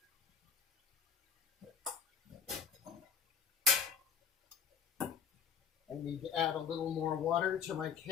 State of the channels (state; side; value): quieter; right; 6.9 dB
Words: I need to add a little more water to my